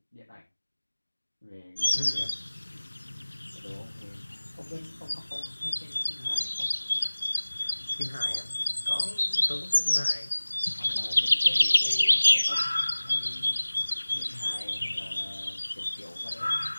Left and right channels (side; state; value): both; inverted; correlation -1.00